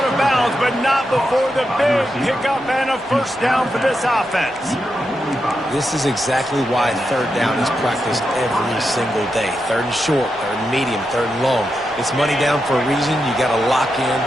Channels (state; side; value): normal; both; correlation 0.86